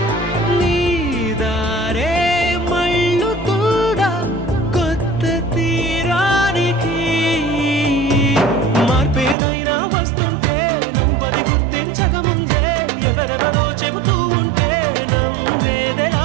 నీ దారే మళ్ళు కూడా కొత్త తీరానికి. మార్పేదైనా వస్తుంటే నువ్వది గుర్తించకముందే ఎవరెవరో చెబుతూ ఉంటే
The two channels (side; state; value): left; drops out; at 9.3 s